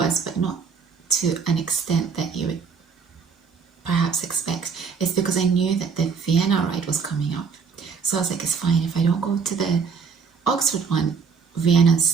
but not to an extent that you would perhaps expect, it's because I knew that the Vienna ride was coming up. So I was like, it's fine, if I don't go to the Oxford one, Vienna's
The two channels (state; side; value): quieter; left; 5.8 dB